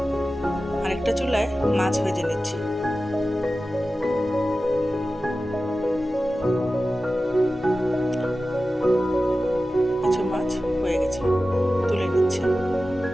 আরেকটা চুলায় মাছ ভেজে নিচ্ছি। কিছু মাছ হয়ে গেছে, তুলে নিচ্ছি।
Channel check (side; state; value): both; normal; correlation 0.94